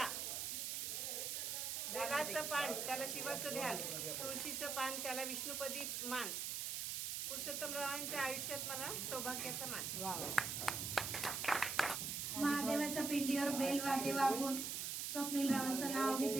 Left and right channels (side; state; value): right; noise; hiss, 2 dB below the sound